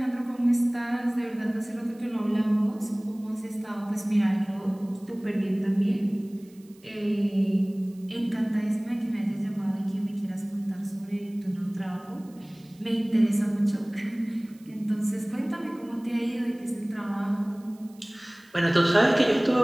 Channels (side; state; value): right; noise; hiss, 29 dB below the sound